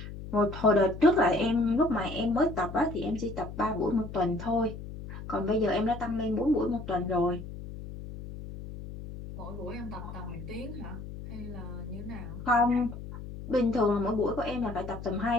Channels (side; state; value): left; noise; hum, 11 dB below the sound